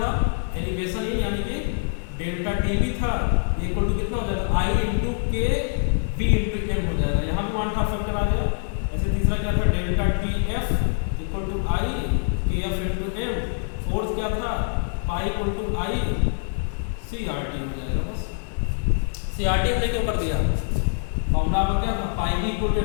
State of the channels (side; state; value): right; silent; digital silence